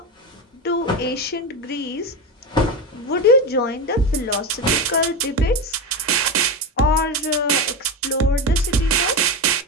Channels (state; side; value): normal; both; correlation 0.18